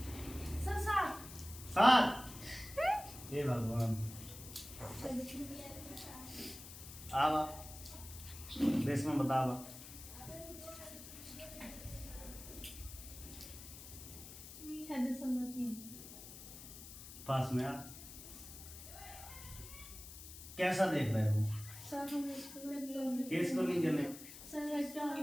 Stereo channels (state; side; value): noise; left; hiss, 13 dB below the sound